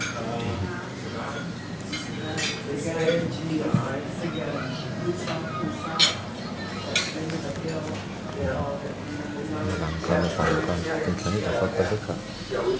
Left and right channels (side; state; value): both; identical; correlation 1.00